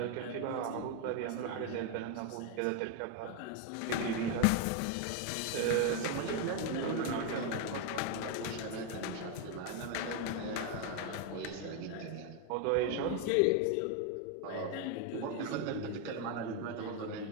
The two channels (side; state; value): both; different; correlation 0.01